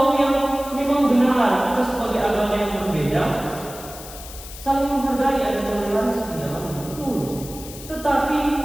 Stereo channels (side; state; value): left; noise; hiss, 14 dB below the sound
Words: yang memang benar kita sebagai agama yang berbeda saling menghargai, ada toleransi di dalamnya, betul. Tetapi